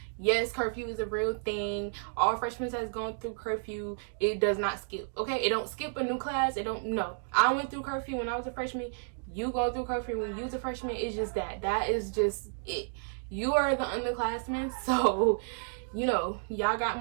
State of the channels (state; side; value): silent; left; digital silence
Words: Yes, curfew is a real thing. All freshmen has gone through curfew. It does not skip. Okay? It don't skip a new class. It don't. No. I went through curfew when I was a freshman. You go through curfew when you was a freshman. It's just that. That is just it. You are the underclassmen, so y'all got